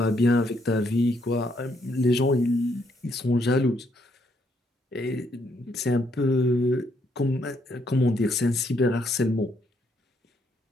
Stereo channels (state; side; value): normal; both; correlation 0.73